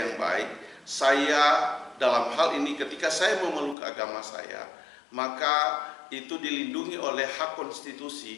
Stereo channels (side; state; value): right; drops out; at 3.8 s